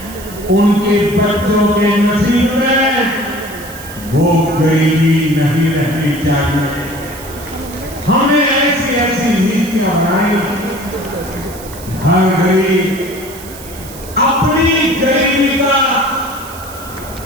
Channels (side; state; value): right; noise; hiss, 16 dB below the sound